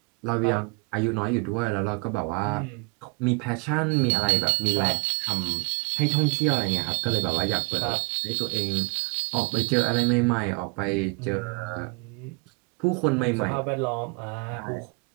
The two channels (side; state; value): left; quieter; 30.6 dB